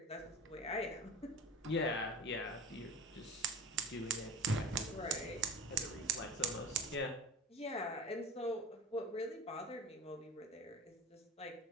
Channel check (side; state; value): both; normal; correlation 0.35